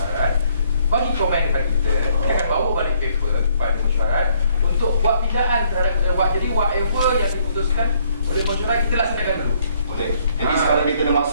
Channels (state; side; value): inverted; both; correlation -0.65